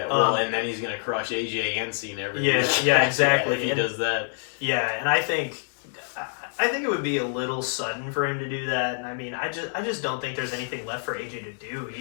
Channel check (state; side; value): silent; right; digital silence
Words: well, and then he's gonna crush AJ and Cena every Yeah, week. yeah, exactly. if he does that. Yeah, and I think it would be a little sudden for him to do that. And I mean, I just don't think there's anything left for AJ to do